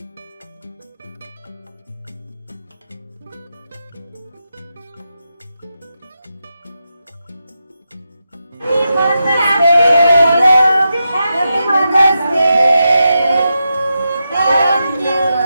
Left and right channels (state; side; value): inverted; both; correlation -0.88